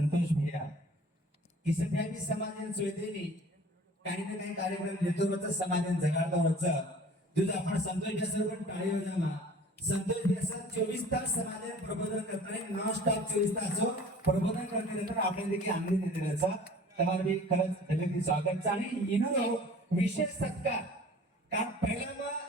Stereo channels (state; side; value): normal; both; correlation 0.47